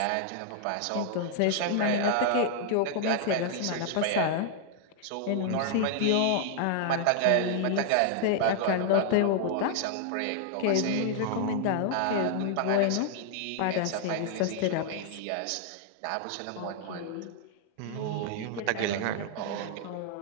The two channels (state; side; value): different; both; correlation 0.00